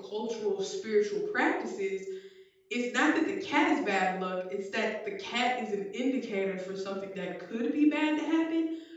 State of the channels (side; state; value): both; identical; correlation 1.00